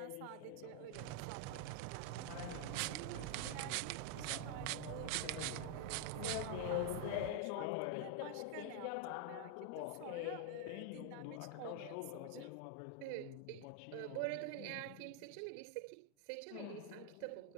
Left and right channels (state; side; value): different; both; correlation 0.00